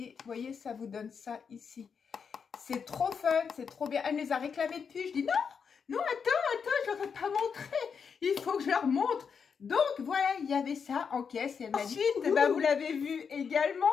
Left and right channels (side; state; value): right; quieter; 6.3 dB